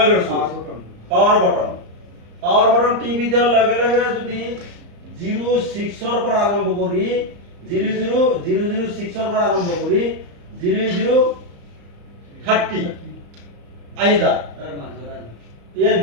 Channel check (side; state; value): left; late; 34 ms